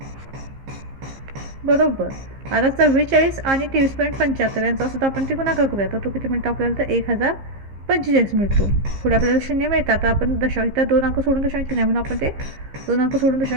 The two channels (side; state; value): left; late; 15 ms